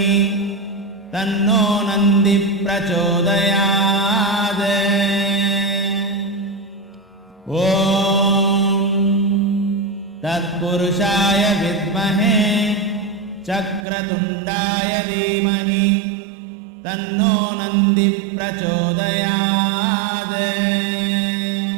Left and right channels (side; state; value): left; drops out; at 13.9 s